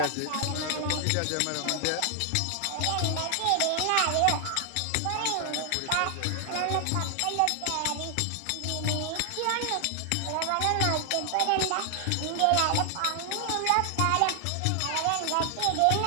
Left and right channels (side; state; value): both; different; correlation 0.00